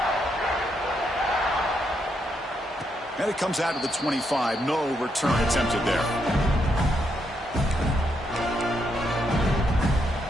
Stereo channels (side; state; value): both; normal; correlation 0.79